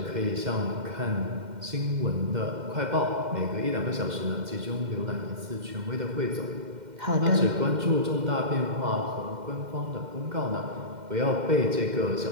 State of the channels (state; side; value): late; left; 2.1 ms